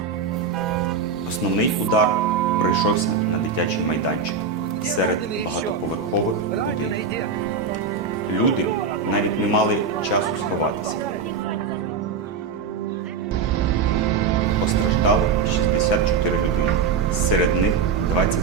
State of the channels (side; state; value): left; quieter; 5.3 dB